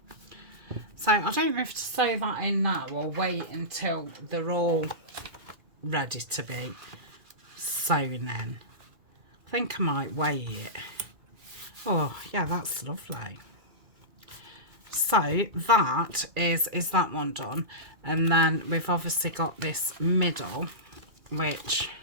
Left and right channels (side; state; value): left; late; 2.4 ms